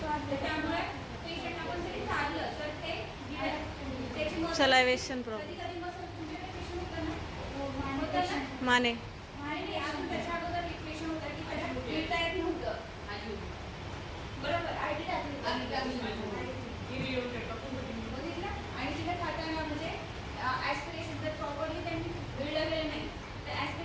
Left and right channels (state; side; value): identical; both; correlation 1.00